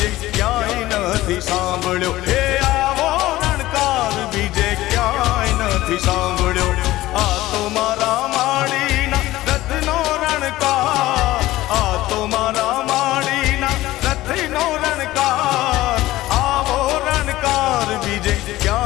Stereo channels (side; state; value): right; quieter; 16.7 dB